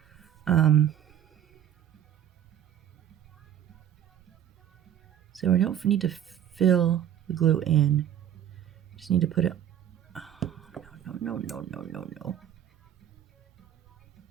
So we don't need to fill the glue in. Just need to put it. Oh, no.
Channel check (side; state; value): left; quieter; 10.5 dB